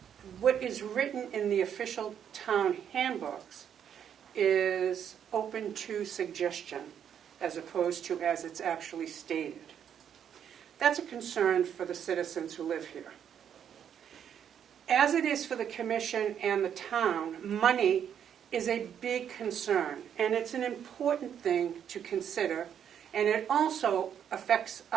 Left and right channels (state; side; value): quieter; left; 8.8 dB